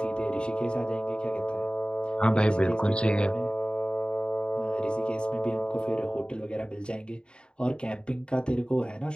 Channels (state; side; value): late; right; 0.051 ms